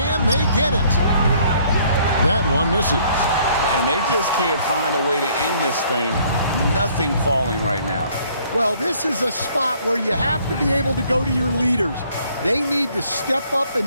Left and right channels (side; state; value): both; inverted; correlation -0.61